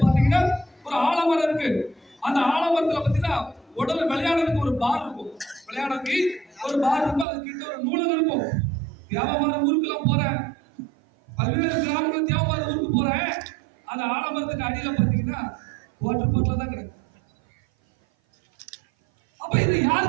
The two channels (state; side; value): drops out; left; at 7.2 s